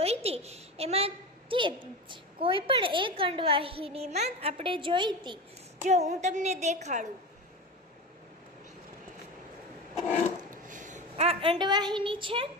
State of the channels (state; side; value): normal; both; correlation 0.25